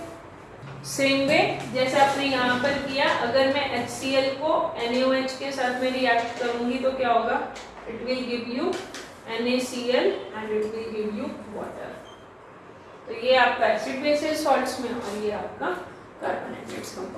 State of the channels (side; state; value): both; identical; correlation 1.00